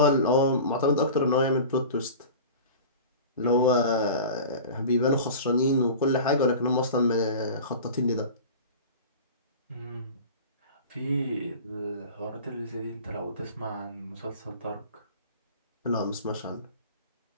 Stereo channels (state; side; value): inverted; both; correlation -0.37